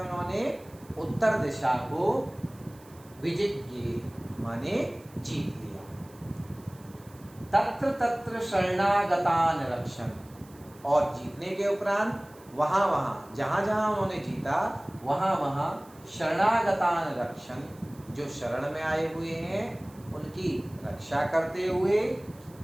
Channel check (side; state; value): right; noise; hiss, 26 dB below the sound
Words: उत्तर दिशा को विजिज्ञे माने जीत लिया। तत्र तत्र शरणागतान रक्षण, और जीतने के उपरांत वहां वहां जहां जहां उन्होंने जीता वहां वहां शरणागतान रक्षण, जो शरण में आए हुए हैं उनकी रक्षा करते हुए,